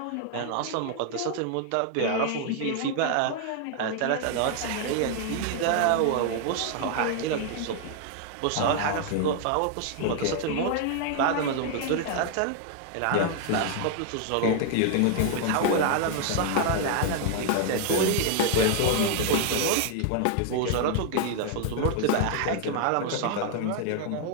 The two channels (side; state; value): both; different; correlation 0.00